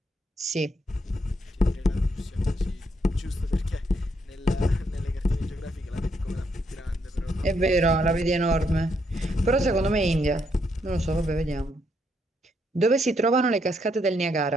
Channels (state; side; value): normal; both; correlation 0.76